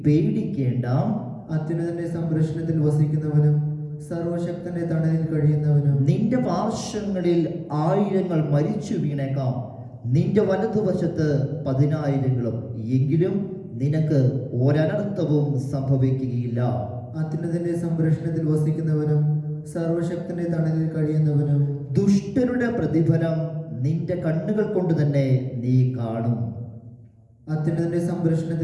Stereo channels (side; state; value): both; identical; correlation 1.00